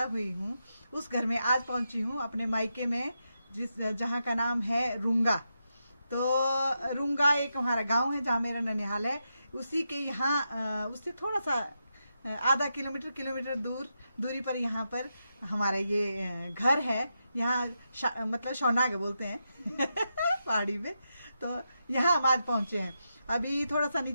हुई हूँ, उस घर में आज पहुंची हूँ, अपने मायके में, जहाँ का नाम है रूंगा। तो रूंगा एक हमारा गांव है जहाँ मेरा ननिहाल है। उसी के यहाँ उससे थोड़ा सा आधा किलोमीटर दूरी पर यहाँ पर हमारा ये घर है। यहाँ मतलब शौनाग बोलते हैं पहाड़ी में। तो यहाँ हम आज पहुंचे हैं। अभी थोड़ा सा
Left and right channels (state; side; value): inverted; both; correlation -0.86